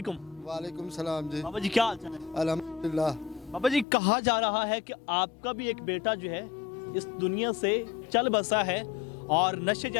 वालेकुम सलाम जी। बाबा जी क्या हाल चाल है? अल्हम्दुलिल्लाह। बाबा जी, कहा जा रहा है कि आपका भी एक बेटा जो है इस दुनिया से चल बसा है और नशे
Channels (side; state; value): right; drops out; at 3.9 s